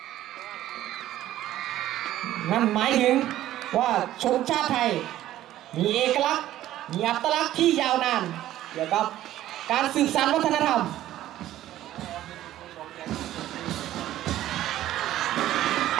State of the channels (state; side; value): quieter; left; 13.5 dB